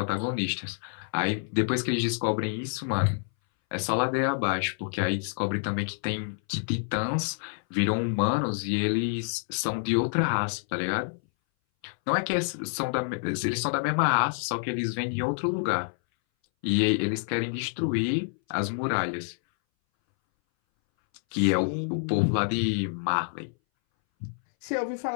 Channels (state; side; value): silent; right; 60 dB below the other